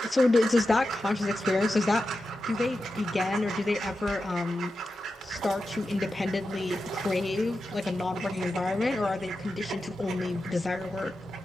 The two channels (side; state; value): both; normal; correlation 0.90